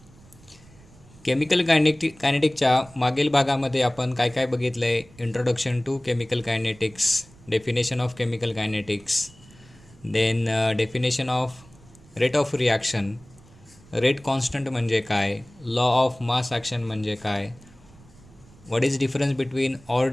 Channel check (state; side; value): noise; right; rumble, 25 dB below the sound